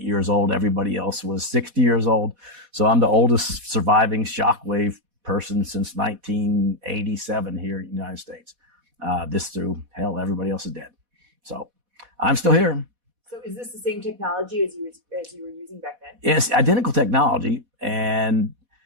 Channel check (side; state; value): left; late; 4.1 ms